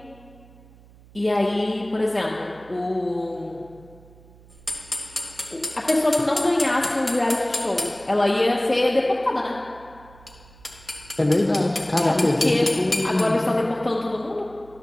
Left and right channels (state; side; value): noise; right; hum, 24 dB below the sound